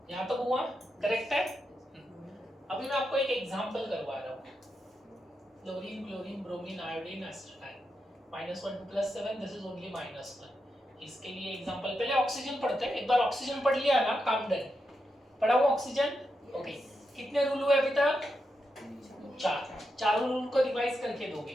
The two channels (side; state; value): both; normal; correlation 0.86